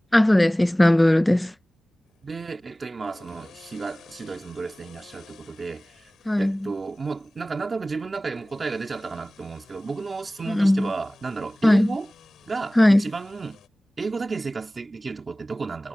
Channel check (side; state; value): both; normal; correlation 0.98